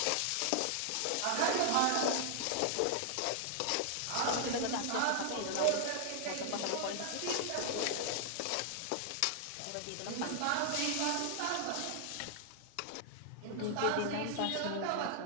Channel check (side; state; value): both; different; correlation 0.00